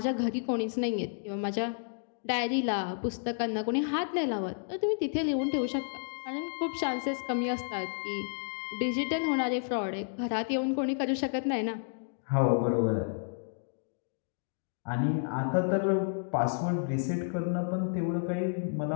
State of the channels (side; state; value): right; silent; digital silence